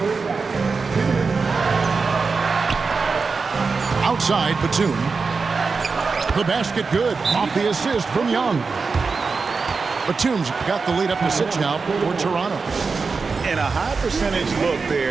Outside, Batum. The basket good. Off the assist from Young. Batum's got the lead up to 6 now for Toronto. And a high percentage look there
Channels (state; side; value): quieter; left; 4.7 dB